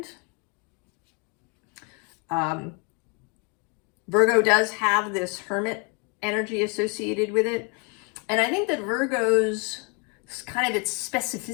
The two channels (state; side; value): quieter; right; 34.0 dB